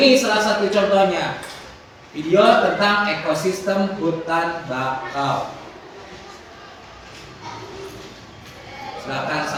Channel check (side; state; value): both; identical; correlation 1.00